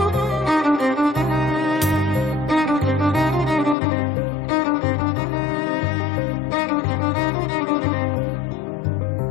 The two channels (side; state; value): right; drops out; at 3.8 s